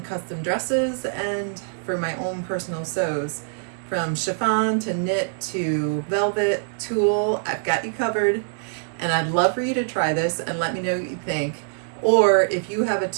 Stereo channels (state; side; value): silent; left; digital silence